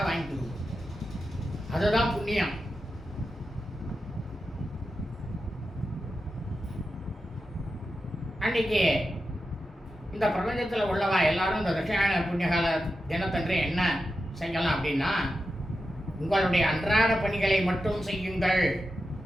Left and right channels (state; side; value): normal; both; correlation 0.90